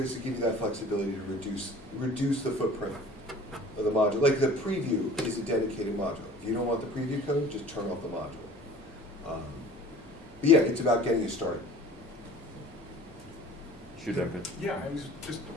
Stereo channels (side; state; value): both; normal; correlation 0.46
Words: to give you that flexibility to reduce the footprint of the module. Like the preview is a dedicated module. If you don't want the preview code, just turn off the module. But yeah, it's about getting you started. Yeah, I was just